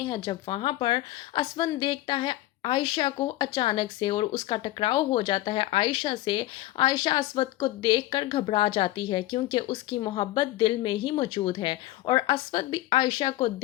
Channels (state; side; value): quieter; right; 16.3 dB